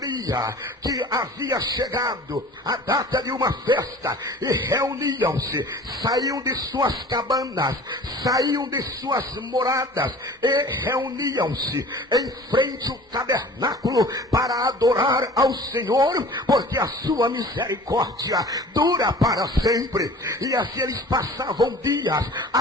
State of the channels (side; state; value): both; normal; correlation 0.44